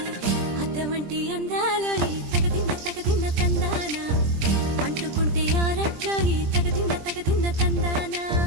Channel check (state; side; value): late; left; 20 ms